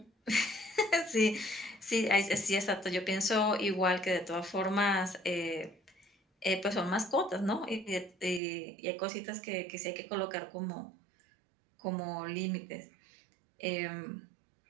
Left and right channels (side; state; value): left; drops out; at 8.4 s